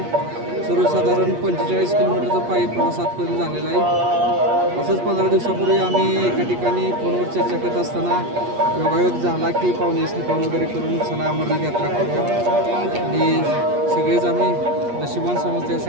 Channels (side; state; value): left; late; 8.4 ms